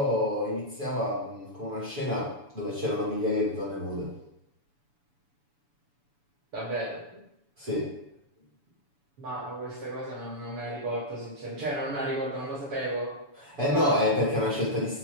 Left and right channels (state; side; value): late; left; 7.0 ms